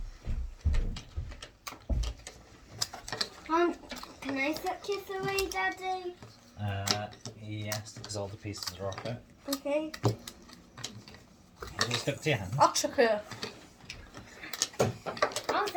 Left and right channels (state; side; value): identical; both; correlation 1.00